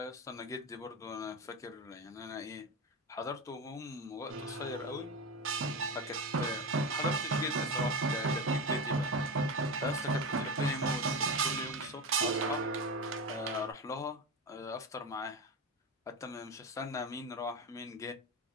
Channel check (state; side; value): normal; both; correlation 0.20